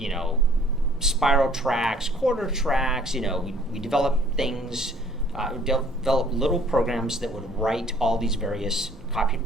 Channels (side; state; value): both; normal; correlation 0.57